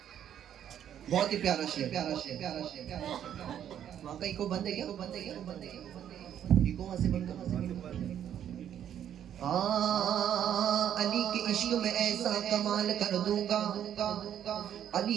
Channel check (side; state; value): left; quieter; 10.0 dB